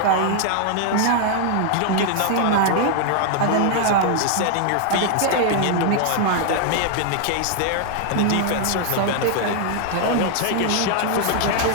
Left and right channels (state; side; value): different; both; correlation 0.00